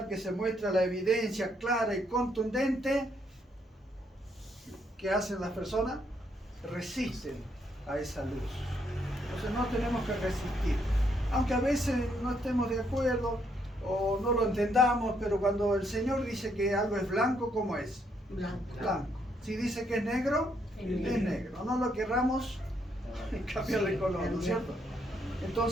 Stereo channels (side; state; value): both; normal; correlation 0.73